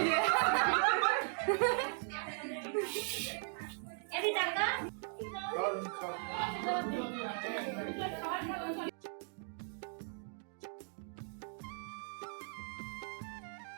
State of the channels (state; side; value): silent; left; 52 dB below the other